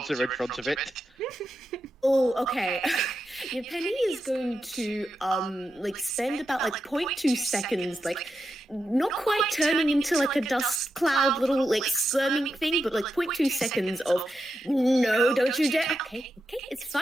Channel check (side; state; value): both; normal; correlation 0.87